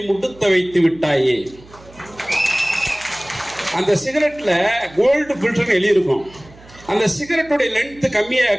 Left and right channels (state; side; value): noise; right; hum, 23 dB below the sound